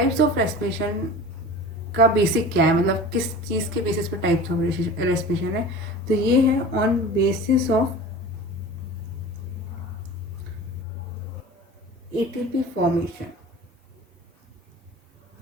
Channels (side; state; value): both; normal; correlation 0.37